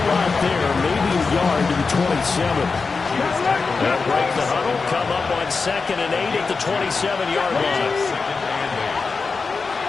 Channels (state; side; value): quieter; right; 4.5 dB